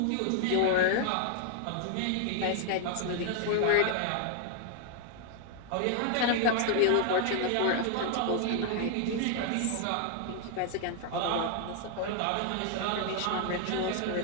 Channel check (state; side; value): different; both; correlation 0.00